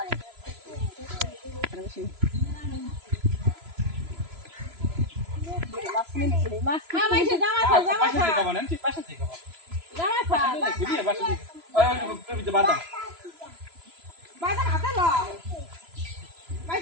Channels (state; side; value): late; left; 3.0 ms